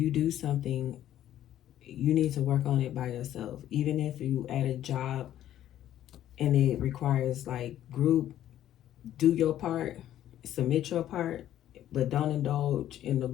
do something you need to work on it by yourself. Even if you at a job and it requires like group, do your part, submit your part, but don't indulge in the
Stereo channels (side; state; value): right; quieter; 12.0 dB